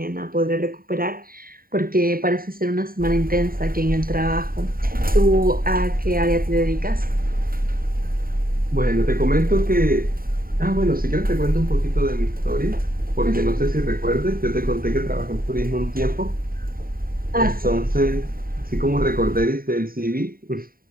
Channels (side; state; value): left; late; 0.42 ms